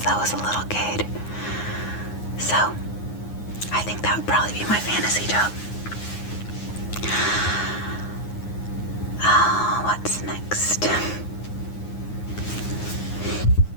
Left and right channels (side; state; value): right; late; 9.6 ms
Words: I was a little kid. So, I think that would probably be my fantasy job. What's next?